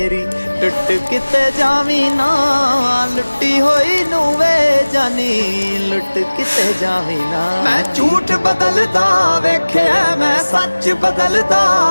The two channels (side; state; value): both; inverted; correlation -1.00